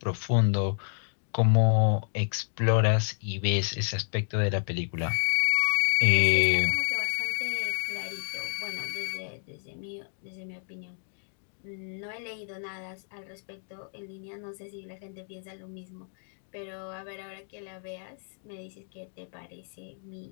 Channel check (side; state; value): right; silent; digital silence